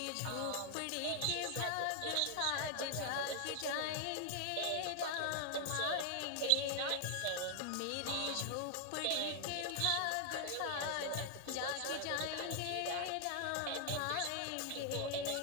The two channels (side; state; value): both; different; correlation 0.00